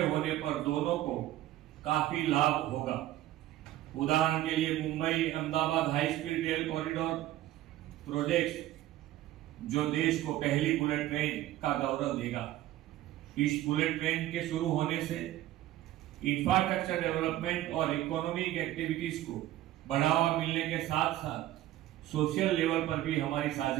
होने पर दोनों को काफी लाभ होगा। उदाहरण के लिए Mumbai Ahmedabad high speed rail corridor project जो देश को पहली बुलेट ट्रेन का गौरव देगा। इस बुलेट ट्रेन के शुरू होने से इंफ्रास्ट्रक्चर डेवलपमेंट और इकोनॉमिक एक्टिविटीज को बढ़ावा मिलने के साथ साथ सोशल लेवल पर भी हमारी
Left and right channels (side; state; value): left; quieter; 14.4 dB